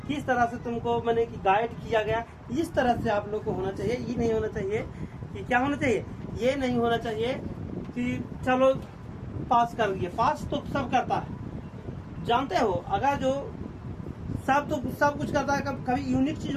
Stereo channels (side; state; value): both; identical; correlation 1.00